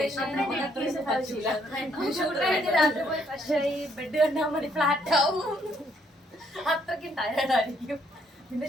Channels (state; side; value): normal; both; correlation 0.69